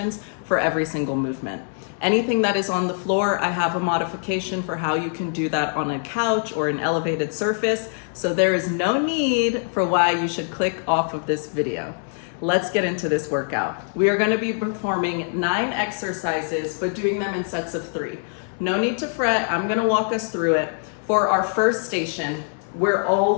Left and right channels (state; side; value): silent; right; 63 dB below the other